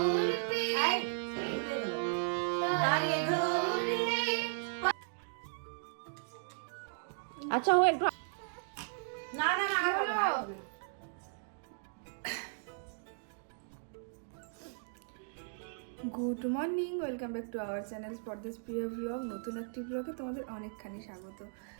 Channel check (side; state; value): left; silent; digital silence